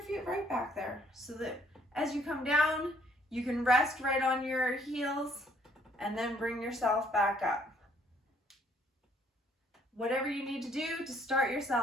right back there so that as you come down, you can rest right on your heels and then bring yourself back up. Whatever you need to do to start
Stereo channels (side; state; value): both; normal; correlation 0.64